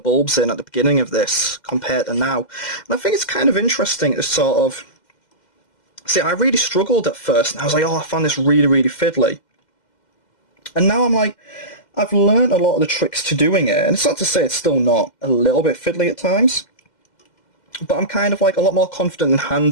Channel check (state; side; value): late; right; 2.1 ms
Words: in at the beginning of this compared to now. And I think it's kind of interesting to sort of... See, I really struggled at first, and I was like, oh, I found this really, really fiddly. And now I'm like, I've learned a lot of the tricks to doing it, and it's not to say it's still not a little bit fiddly at times, but I'm kind of like a lot more confident in